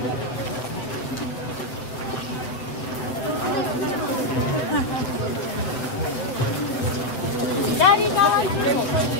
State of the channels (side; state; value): right; late; 8.0 ms